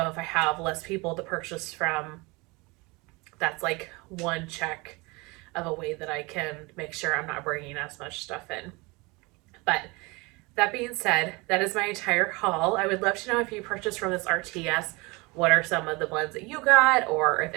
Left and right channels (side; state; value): left; quieter; 25.6 dB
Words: if I have less people to purchase from, that's like one check of a way that I can make sure I'm not bringing as much stuff in. But that being said, that is my entire haul. I would love to know if you purchased from this RTS, what are some of the blends that you got, or if